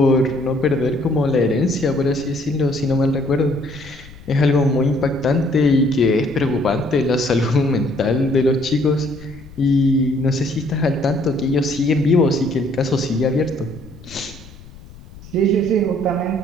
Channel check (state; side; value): noise; left; rumble, 19 dB below the sound